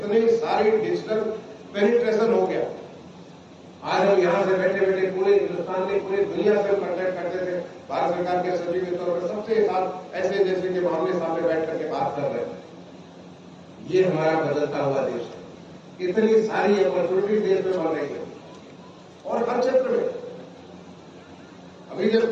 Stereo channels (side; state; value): both; identical; correlation 1.00